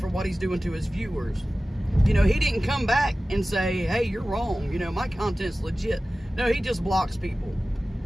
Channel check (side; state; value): both; normal; correlation 0.96